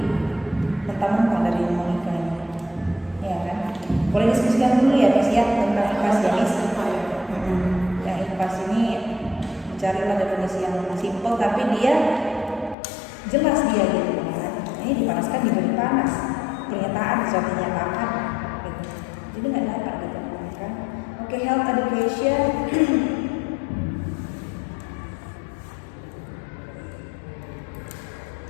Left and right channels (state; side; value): drops out; right; at 12.8 s